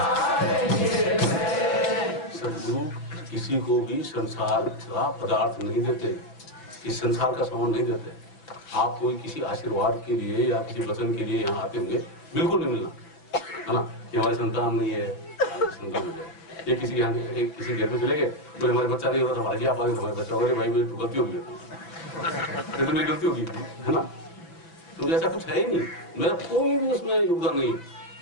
किसी को भी संसार का पदार्थ नहीं देते, इस संसार का सामान नहीं देते। आप कोई किसी आशीर्वाद के लिए या किसी वचन के लिए यहाँ आते होंगे, बिल्कुल नहीं मिलना है ना कि हमारी संतान नहीं है, संतान हो जाए। ये किसी यहाँ किसी घर में चले गए तो हमारे बच्चा नहीं होता था, भाई आप आगे हमारे बच्चा, अरे भाई मेरी तो गलती होगी, तो मेरी गलती होगी है ना। तो ऐसा कुछ है ही नहीं, मेरा कोई भी उसमें योगदान नहीं,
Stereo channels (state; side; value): late; right; 6.0 ms